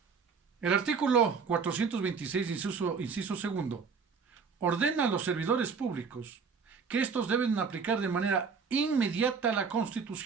El artículo 426, inciso segundo, ordena a los servidores públicos que estos deben aplicar de manera inmediata la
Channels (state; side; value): quieter; left; 5.5 dB